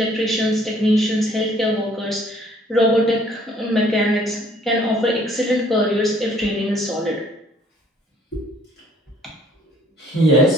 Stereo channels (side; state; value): both; normal; correlation 0.60